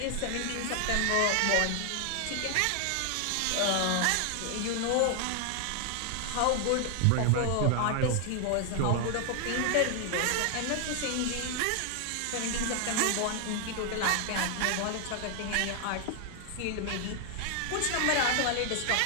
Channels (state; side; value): different; both; correlation 0.00